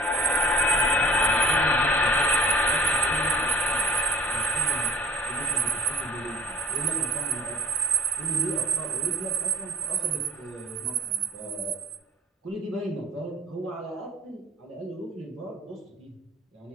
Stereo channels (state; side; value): normal; both; correlation 0.51